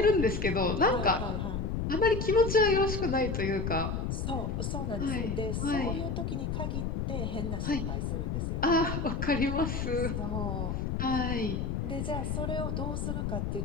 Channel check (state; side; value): noise; left; rumble, 1 dB below the sound